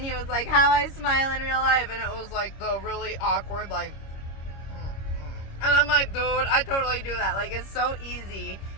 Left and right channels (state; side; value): late; right; 26 ms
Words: he was like, how I smile in real life, and it was like the really awkward like, and I'm like, dude, I totally do that. Like, it's so easy